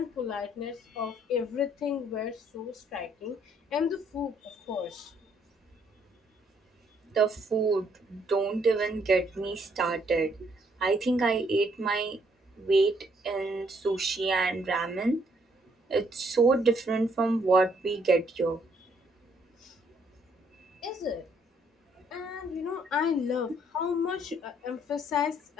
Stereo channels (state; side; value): normal; both; correlation 0.68